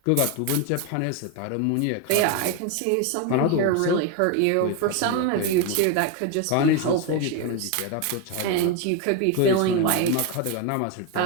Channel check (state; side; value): different; both; correlation 0.02